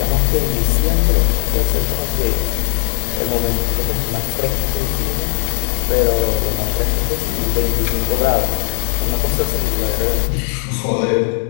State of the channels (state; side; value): silent; right; digital silence